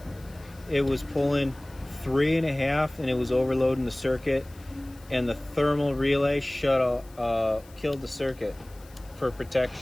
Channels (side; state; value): left; noise; hiss, 26 dB below the sound